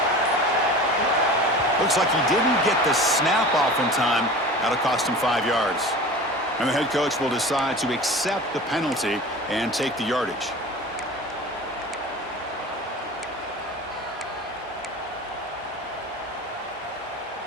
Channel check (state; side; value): normal; both; correlation 0.37